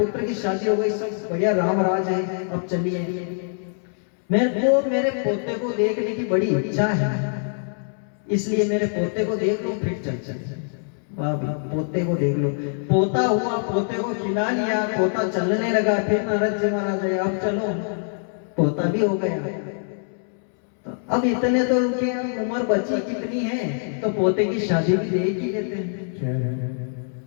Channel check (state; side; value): silent; right; 63 dB below the other